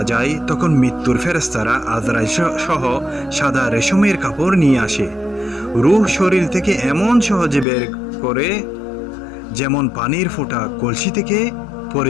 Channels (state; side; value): drops out; right; at 7.7 s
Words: যায় তখন মৃত্যুর ফেরেশতারা আজরাইল সহ সাদা রেশমের কাপড় নিয়ে আসে। রূহ শরীর থেকে এমন সহজে বের করে যেমন পানির ফোঁটা কলসি থেকে